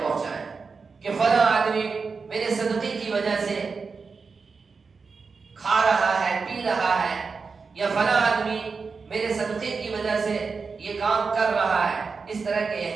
پہنچائیں کہ فلاں آدمی میرے صدقے کی وجہ سے کھا رہا ہے، پی رہا ہے، یا فلاں آدمی میرے صدقے کی وجہ سے یہ کام کر رہا ہے۔ اس طرح کے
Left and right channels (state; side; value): quieter; left; 4.9 dB